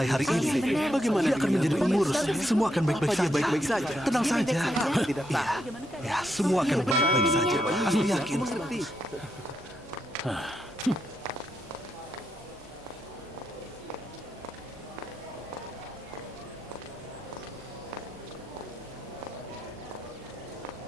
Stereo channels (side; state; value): both; normal; correlation 0.81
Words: hari ini. Bagaimana dia akan menjadi pengurus? Semua akan baik-baik saja. Tenang saja. Ya, semua akan baik-baik saja. Aku yakin.